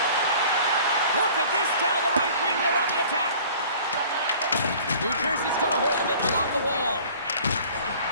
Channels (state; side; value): inverted; both; correlation -0.48